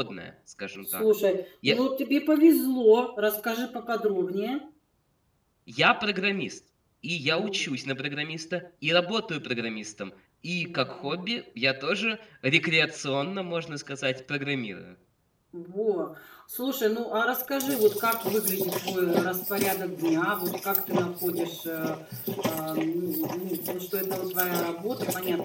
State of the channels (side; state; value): both; identical; correlation 1.00